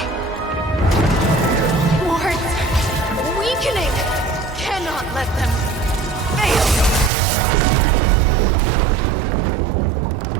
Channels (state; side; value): drops out; left; at 7.1 s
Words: Wards! Weakening! Cannot let them fail!